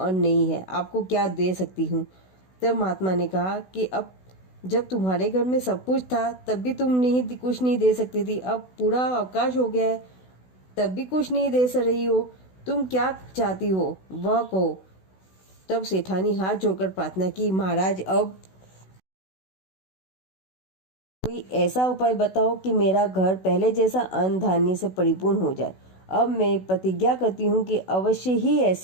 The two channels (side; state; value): right; late; 16 ms